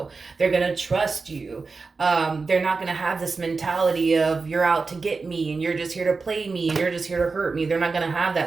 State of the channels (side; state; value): left; quieter; 4.3 dB